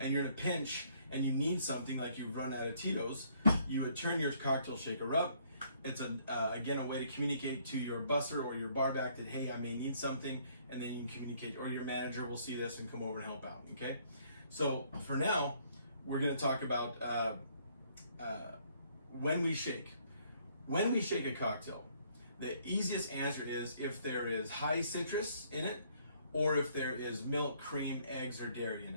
you're in a pinch and you need something, like you've run out of Tito's, you would turn your cocktail shaker up. It's again a way to communicate to your busser or your bar back that, hey, I may need something, and then you can communicate, or your manager will see this and come over and help out, okay? So for now, we're gonna talk about when we shake. When we shake a cocktail, the easiest answer is if there is high citrus in it, or if there is milk, cream, eggs, or dairy in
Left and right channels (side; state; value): both; inverted; correlation -0.65